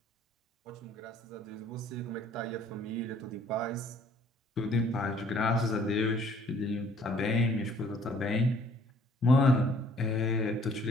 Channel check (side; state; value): both; normal; correlation 0.59